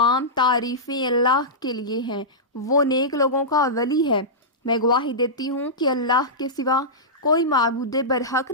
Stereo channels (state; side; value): normal; both; correlation -0.15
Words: تعریفیں اللہ کے لیے ہیں، وہ نیک لوگوں کا ولی ہے۔ میں گواہی دیتی ہوں کہ اللہ کے سوا کوئی معبود برحق